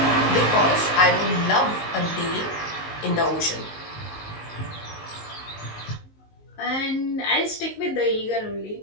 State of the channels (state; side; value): late; right; 19 ms